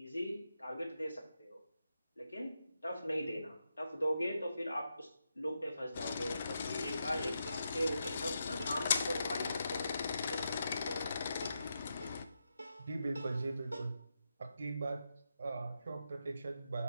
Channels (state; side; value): inverted; both; correlation -0.84